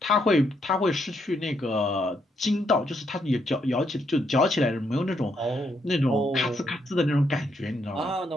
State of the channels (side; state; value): both; normal; correlation 0.76